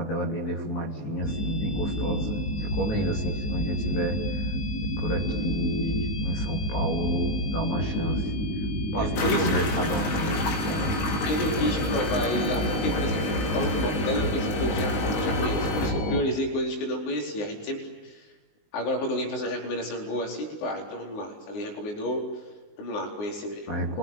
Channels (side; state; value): right; late; 19 ms